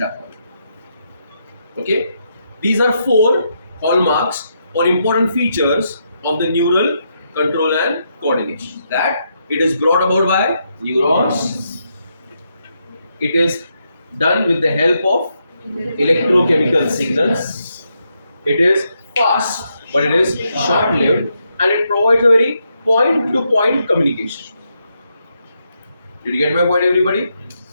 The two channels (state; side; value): inverted; both; correlation -0.81